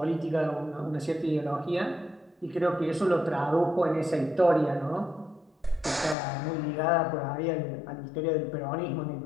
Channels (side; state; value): right; drops out; at 6.2 s